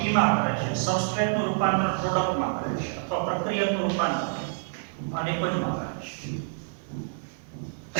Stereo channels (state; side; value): silent; left; digital silence